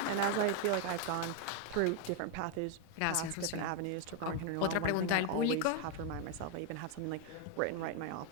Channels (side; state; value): both; different; correlation 0.01